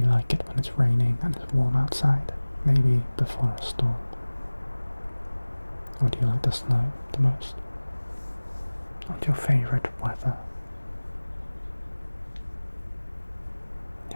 you like it when it's raining and it's warm outside? Maybe before a storm? Or do you like the snow the most? What's your favourite weather?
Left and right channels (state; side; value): inverted; both; correlation -1.00